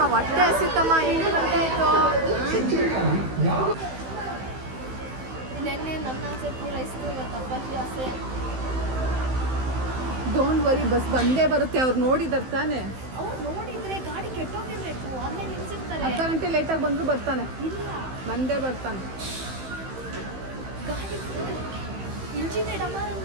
ಹೊಟ್ಟೆ ಹಸಿತಮ್ಮ, 8 ಗಂಟೆ ಆಯಿತು. ನೆನ್ನೆ ನನ್ನ ಆಸೆ ಪೂರೈಸ್ತು, ಇವತ್ತು ಅಪ್ಪಾಜಿ ಆಸೆ. ಡೋಂಟ್ ವರಿ, ಬಸ್ ಬಂದೇ ಬರುತ್ತೆ. ಅವ್ರು ನೋಡಿದಾರೆ ತಾನೆ. ಅವ್ರು ನೋಡಿದ್ರೆ ಗಾಡಿ ಕೆಟ್ಟೋಗಿರ್ಬೇಕು, ಅಲ್ಲೇ ನಿಲ್ಸಿರ್ತಾರೆ. ಅರ್ಧ ಗಂಟೆ ಲೇಟಾಗಿ ಬಂದರೂ ಬರ್ತಾನೆ. ಇಲ್ಲ, ಬಂದೇ ಬರ್ತಾನೆ. ಗಾಡಿ ಇಂಜಿನ್ ಡಮಾರ್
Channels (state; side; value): late; left; 15 ms